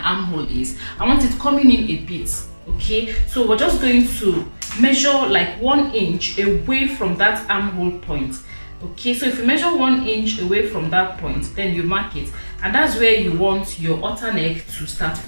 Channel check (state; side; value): inverted; both; correlation -1.00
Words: armhole is. I want it coming in a bit, okay? So we're just going to measure like 1 inch away from that armhole point. Okay, so if you measure 1 inch away from that point, then you mark it, and that's where you want your halter neck to start